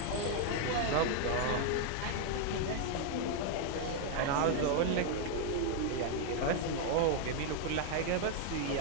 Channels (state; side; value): different; both; correlation 0.00